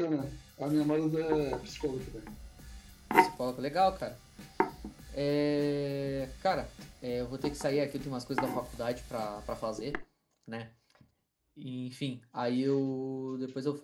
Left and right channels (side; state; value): both; identical; correlation 1.00